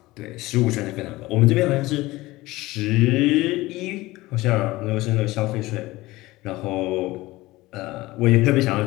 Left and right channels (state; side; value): quieter; right; 19.3 dB